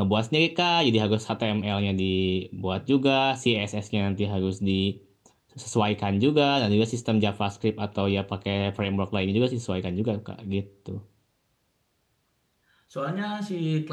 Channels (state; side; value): identical; both; correlation 1.00